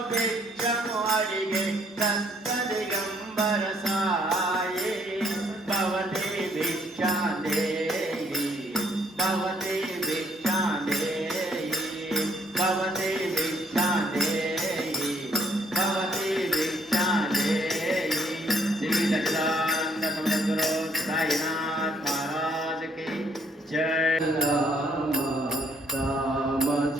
భిక్షము అడిగే దత్త దిగంబర సాయి భవతి భిక్షాందేహి భవతి భిక్షాందేహి భవతి భిక్షాందేహి భవతి భిక్షాందేహి. శ్రీ సచ్చిదానంద సమద్గురు సాయినాథ్ మహారాజ్ కి జై. రామ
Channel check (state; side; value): normal; both; correlation 0.66